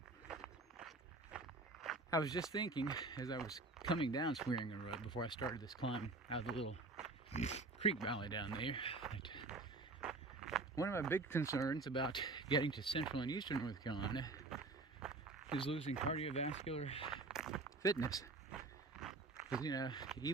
I was just thinking as I was coming down Swearingen Road before I started this climb out of the little creek valley down there, that one of my big concerns about getting to central and eastern North Carolina is losing cardiovascular fitness. Because, you know,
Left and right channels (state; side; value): quieter; left; 3.4 dB